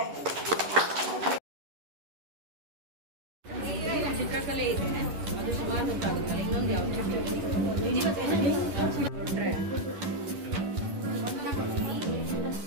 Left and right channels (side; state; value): left; late; 11 ms